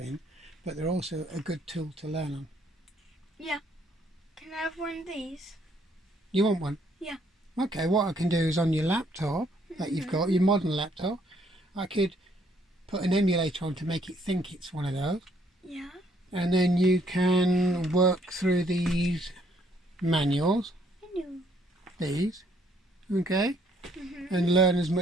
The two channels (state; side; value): normal; both; correlation 0.67